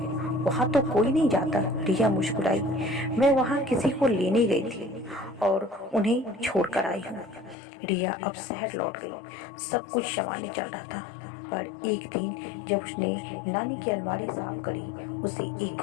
वहां तो कोई नहीं जाता। रिया मुस्कुराई, मैं वहां किसी को लेने गई थी और उन्हें छोड़कर आई हूँ। रिया अब शहर लौट गई। सब कुछ सामान्य चल रहा था। पर एक दिन जब उसने नानी की अलमारी साफ करी, उसे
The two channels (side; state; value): right; drops out; at 7.6 s